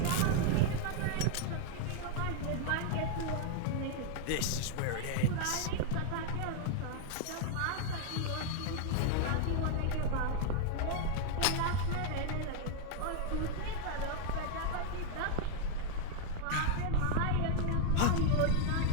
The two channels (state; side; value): different; both; correlation 0.00